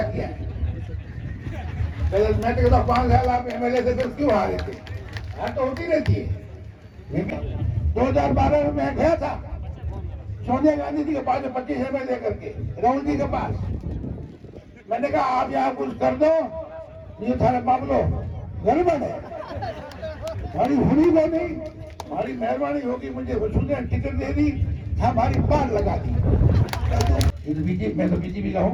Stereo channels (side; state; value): both; identical; correlation 1.00